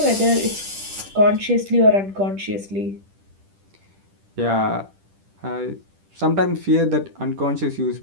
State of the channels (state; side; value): late; left; 10 ms